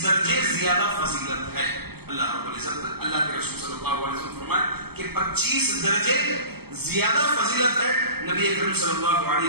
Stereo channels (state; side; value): late; left; 0.96 ms